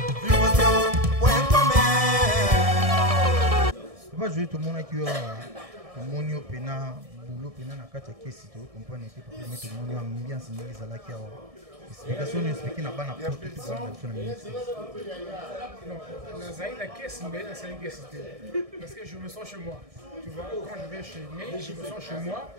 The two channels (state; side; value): late; left; 1.6 ms